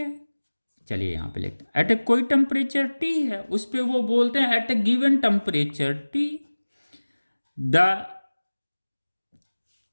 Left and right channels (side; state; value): both; inverted; correlation -1.00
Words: चलिए यहां पे लिखते हैं एट ए कोई टेम्परेचर टी है, उस पे वो बोलते हैं at a given temperature T the